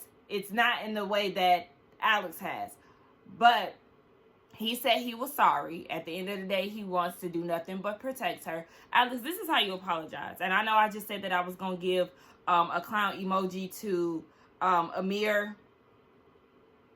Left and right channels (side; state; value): both; identical; correlation 1.00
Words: it's not in the way that Alex has. But he said he was sorry. At the end of the day, he wants to do nothing but protect her. Alex, this is how you apologize. And I know I just said that I was going to give a clown emoji to Amir.